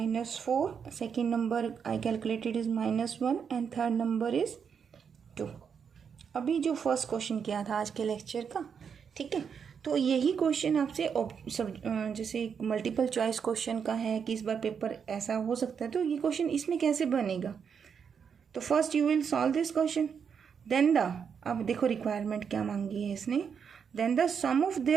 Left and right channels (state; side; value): quieter; left; 6.9 dB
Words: second number I calculated is -1 and third number is 2। अभी जो फर्स्ट क्वेश्चन किया था आज के लेक्चर का, ठीक है। तो यही क्वेश्चन आपसे सब जैसे मल्टीपल चॉइस क्वेश्चन का है कि इस बार पेपर ऐसा हो सकता है, तो ये क्वेश्चन इसमें कैसे बनेगा। तो first you will solve this question, then the, अब देखो रिक्वायरमेंट क्या मांगी है इसने, then the sum of